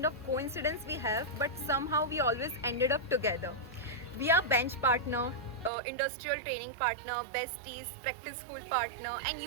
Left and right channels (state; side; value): drops out; left; at 5.7 s